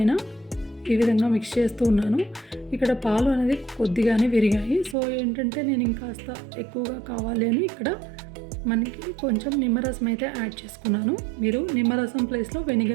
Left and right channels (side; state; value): left; drops out; at 5.0 s